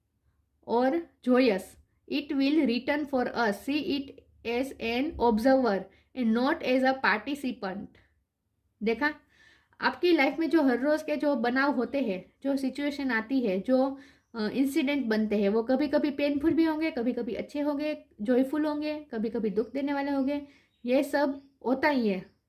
or joyous, it will return for us. See it as an observer and not as a participant. देखा, आपकी लाइफ में जो हर रोज के जो बनाव होते हैं, जो सिचुएशन आती है, जो इंसिडेंट बनते हैं, वो कभी कभी पेनफुल भी होंगे, कभी कभी अच्छे होंगे, जॉयफुल होंगे, कभी कभी दुख देने वाले होंगे। ये सब होता ही है,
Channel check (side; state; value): both; identical; correlation 1.00